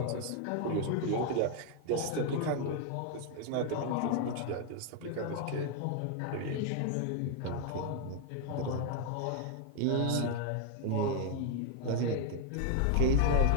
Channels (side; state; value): both; different; correlation 0.00